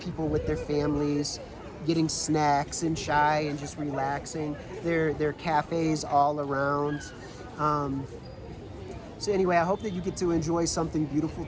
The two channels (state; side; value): identical; both; correlation 1.00